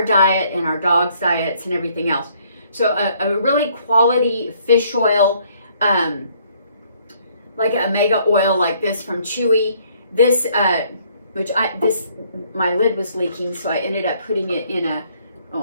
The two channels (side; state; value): both; inverted; correlation -0.64